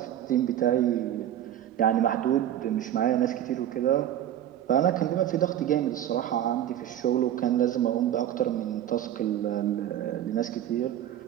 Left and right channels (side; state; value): left; quieter; 11.4 dB